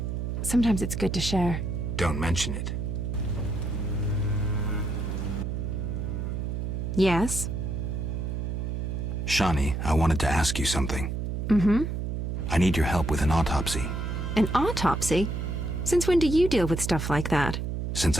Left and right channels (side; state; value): right; noise; hum, 3 dB below the sound